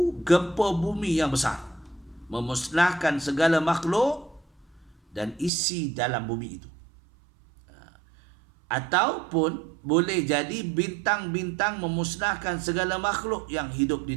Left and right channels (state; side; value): drops out; left; at 5.5 s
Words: gempa bumi yang besar, memusnahkan segala makhluk dan isi dalam bumi itu. Ataupun boleh jadi bintang-bintang memusnahkan segala makhluk yang hidup